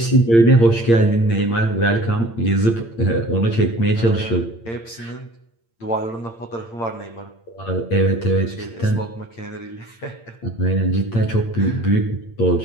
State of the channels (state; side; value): late; right; 8.8 ms